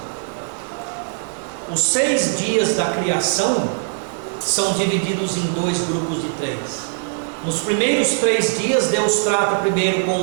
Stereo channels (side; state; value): left; silent; digital silence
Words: Os 6 dias da criação são divididos em 2 grupos de 3. Nos primeiros 3 dias, Deus trata primeiro